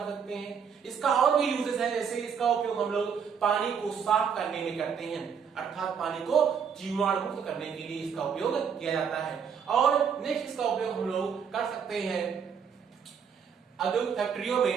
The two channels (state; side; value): quieter; left; 7.0 dB